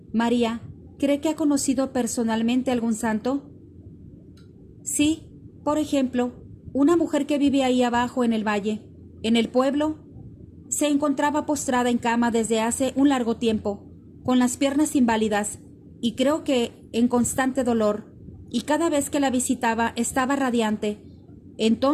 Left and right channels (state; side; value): identical; both; correlation 1.00